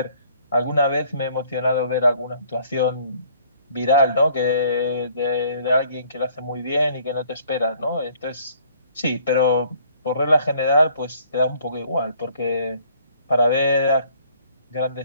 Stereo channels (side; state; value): both; inverted; correlation -0.60